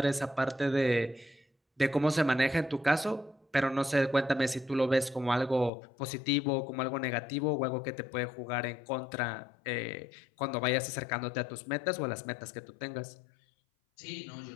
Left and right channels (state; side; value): drops out; right; at 5.7 s